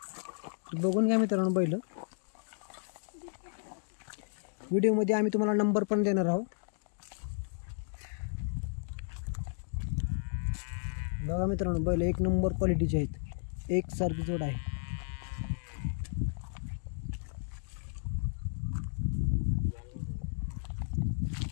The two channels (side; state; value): right; silent; digital silence